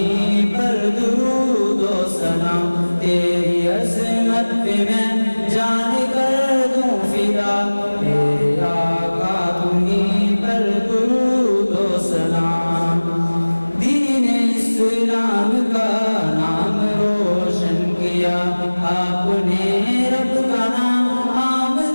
پر درود و سلام، تیری عظمت پہ میں جان کر دوں فدا، میرے آقا تمہیں پر درود و سلام۔ دین اسلام کا نام روشن کیا آپ نے، رب کا نام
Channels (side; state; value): both; inverted; correlation -1.00